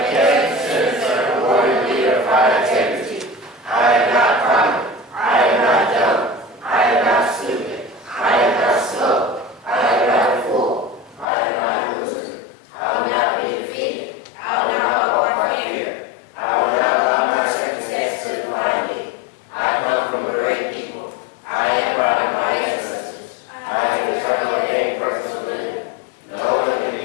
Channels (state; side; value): drops out; right; at 11.2 s